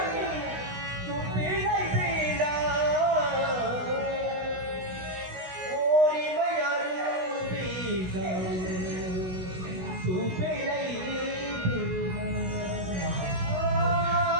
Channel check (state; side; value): late; left; 16 ms